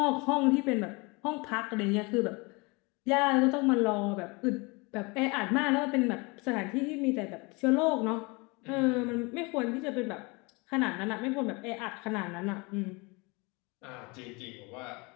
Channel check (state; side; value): quieter; right; 27.6 dB